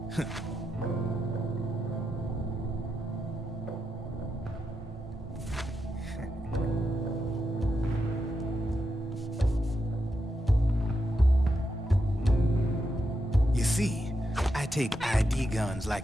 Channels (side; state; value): both; normal; correlation 0.85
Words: You see, I take ID guns